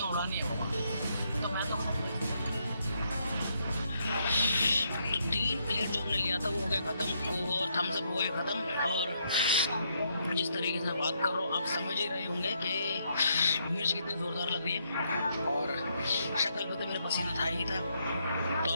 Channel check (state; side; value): inverted; both; correlation -0.75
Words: उड़ानी है बाबा, तो मैं तो 3 प्लेट जो हमने लिया था वो हो गया ख़त्म, और थम्स अप हो गया ख़त्म। और जिस तरीके से बात कर रहा हूँ आप समझ ही रहे होंगे कि मिर्च कितनी ज़ोरदार लग रही है, और शक्ल पे तो मेरा पसीना था ही था। तो